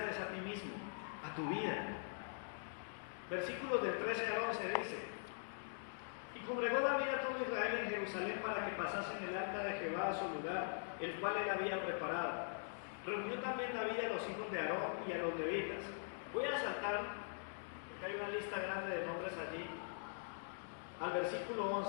es a ti mismo, a tu vida. Versículos del 13 al 11 dice: Y congregó David a todo Israel en Jerusalén para que pasasen el arca de Jehová a su lugar, el cual él había preparado. Reunió también David a los hijos de Aarón y a los levitas. Voy a saltar, porque hay una lista grande de nombres allí, al versículo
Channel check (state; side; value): silent; right; digital silence